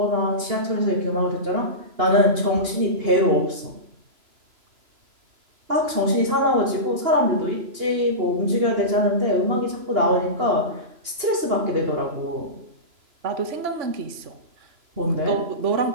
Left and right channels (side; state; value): left; late; 2.8 ms